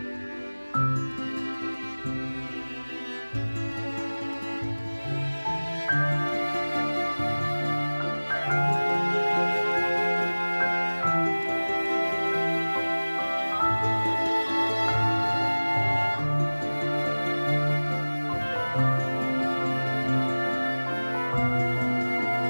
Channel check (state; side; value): inverted; both; correlation -1.00